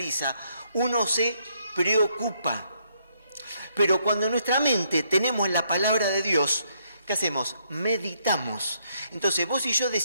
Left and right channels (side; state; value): both; inverted; correlation -0.73